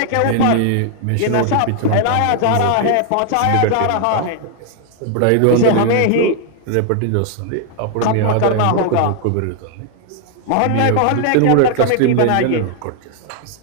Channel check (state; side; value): different; both; correlation 0.00